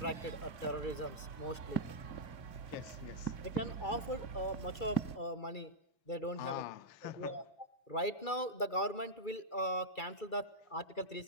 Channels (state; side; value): late; right; 2.3 ms